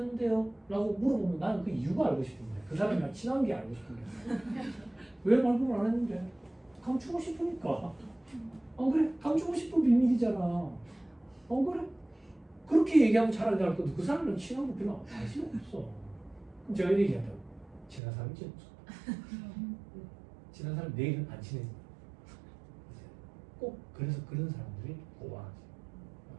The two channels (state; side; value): drops out; left; at 18.0 s